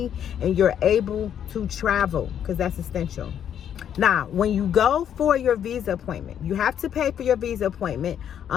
and you're able to travel, because that's essential. Now, when you go for your visa appointment, you have to pay for your visa appointment.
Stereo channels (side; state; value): right; quieter; 9.3 dB